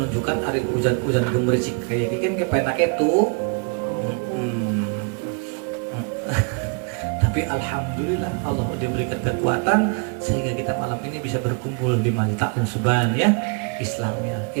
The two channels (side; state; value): left; quieter; 35.6 dB